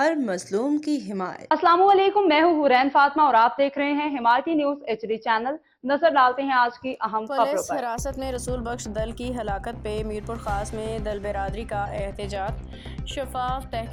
مظلوم کی حمایت۔ السلام علیکم، میں ہوں حورین فاطمہ اور آپ دیکھ رہے ہیں حمایتی نیوز HD چینل۔ نظر ڈالتے ہیں آج کی اہم خبروں پر۔ پولیس حراست میں رسول بخش دل کی ہلاکت پہ میرپور خاص میں دل برادری کا احتجاج، شفاف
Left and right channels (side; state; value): both; identical; correlation 1.00